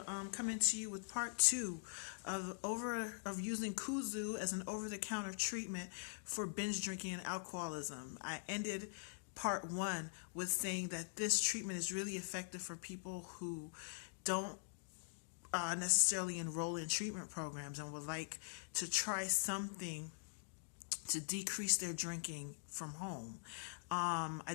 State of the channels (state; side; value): silent; right; digital silence